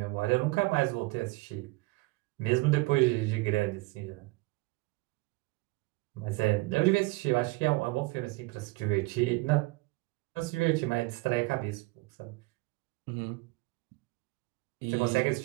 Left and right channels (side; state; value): left; quieter; 23.1 dB